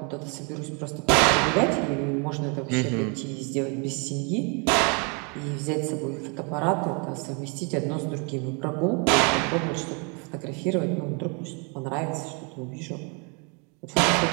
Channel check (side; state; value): left; quieter; 34.4 dB